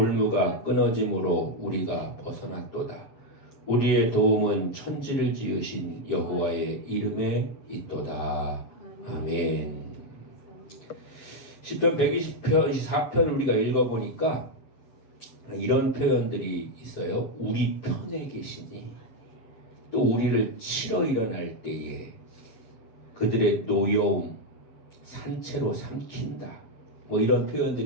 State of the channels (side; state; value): right; late; 7.3 ms